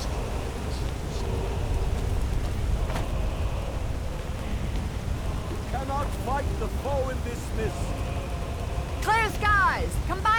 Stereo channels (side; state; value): both; identical; correlation 1.00